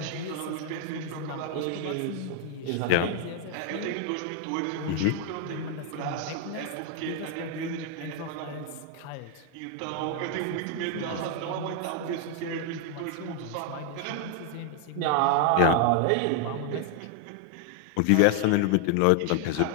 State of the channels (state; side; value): different; both; correlation 0.00